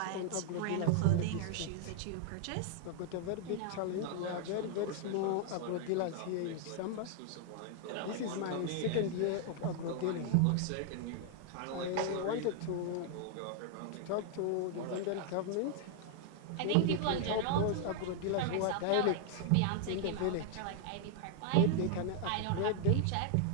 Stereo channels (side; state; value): both; different; correlation 0.00